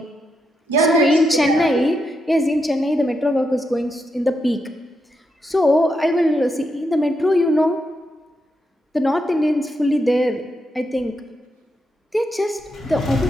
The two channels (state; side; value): normal; both; correlation 0.83